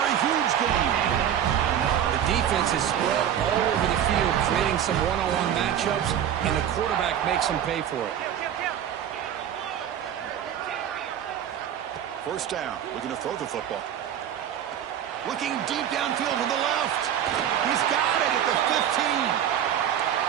a huge gain. The defense is spread all over the field, creating some one-on-one matchups, and the quarterback makes them pay for it. First down, looking to throw the football. Looking deep downfield to the left. He's got it at the 15.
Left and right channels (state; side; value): quieter; left; 9.8 dB